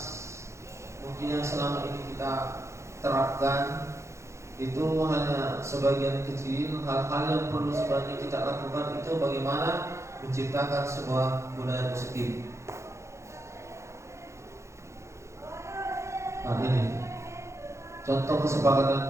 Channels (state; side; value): late; left; 0.14 ms